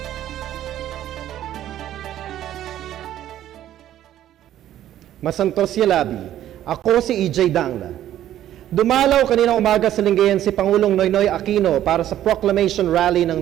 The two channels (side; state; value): left; quieter; 12.2 dB